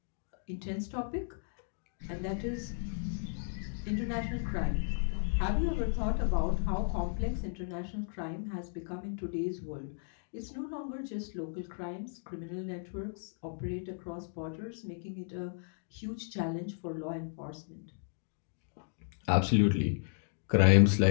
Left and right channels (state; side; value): silent; right; digital silence